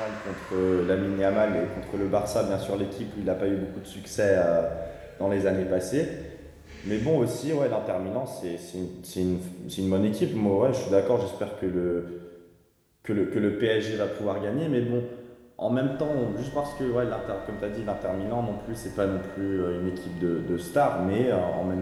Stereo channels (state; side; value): identical; both; correlation 1.00